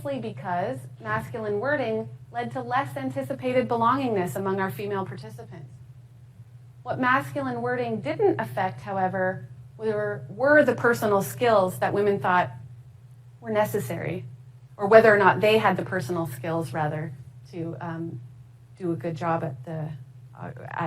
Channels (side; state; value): both; identical; correlation 1.00